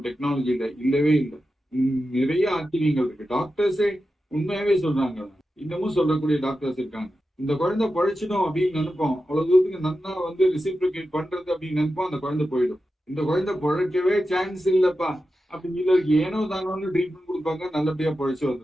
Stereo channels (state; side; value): normal; both; correlation 0.91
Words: டெக்னாலஜியில இல்லவே இல்லை, நிறைய ஆச்சரியங்கள் இருக்கு. டாக்டர்ஸே உண்மையாவே சொல்றாங்க, இன்னமும் சொல்லக்கூடிய டாக்டர்ஸ் இருக்காங்க. இந்த குழந்தை பழைச்சிடும் அப்படின்னு நினைப்போம், அவ்வளவு தூரத்துக்கு நன்னா வந்து ரிசிப்ரிகேட் பண்றது அப்படின்னு நினைப்போம், அந்த குழந்தை போயிடும். இந்த குழந்தை பழைக்கவே சான்ஸ் இல்லப்பா அப்படின்னு சொல்லி ஏனோ தானோன்னு ட்ரீட்மெண்ட் கொடுப்பாங்க, நல்லபடியா பழைச்சு